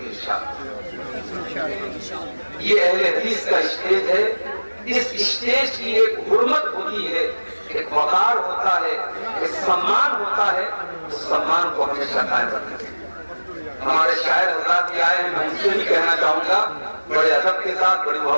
انشاءاللہ. یہ اہل حدیث کا اسٹیج ہے. اس اسٹیج کی ایک حرمت ہوتی ہے، ایک وقار ہوتا ہے، ایک سمان ہوتا ہے. اس سمان کو ہمیشہ قائم رکھنا چاہیے. ہمارے شاعر حضرات بھی آئے ہیں، میں ان سے بھی کہنا چاہوں گا بڑے ادب کے ساتھ، بڑی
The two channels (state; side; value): inverted; both; correlation -1.00